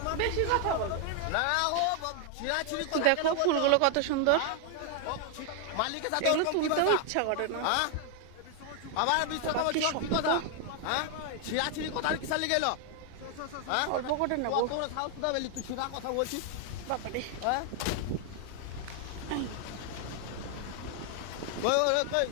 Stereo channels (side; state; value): both; different; correlation 0.00